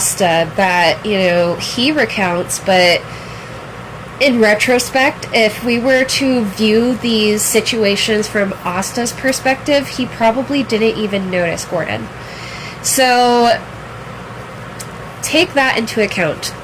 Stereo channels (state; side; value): identical; both; correlation 1.00